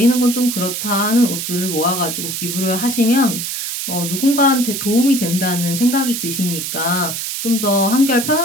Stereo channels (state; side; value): noise; right; hiss, 4 dB below the sound